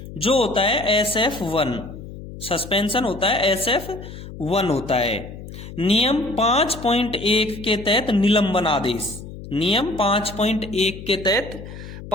जो होता है SF1। सस्पेंशन होता है SF1 होता है। नियम 5.1 के तहत निलंबन आदेश। नियम 5.1 के तहत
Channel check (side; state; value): left; noise; hum, 13 dB below the sound